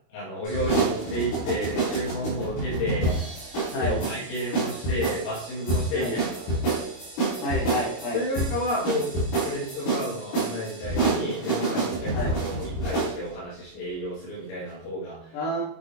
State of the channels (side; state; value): right; late; 26 ms